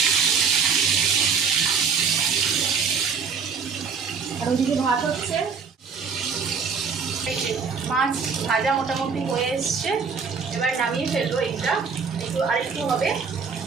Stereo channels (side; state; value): left; quieter; 5.7 dB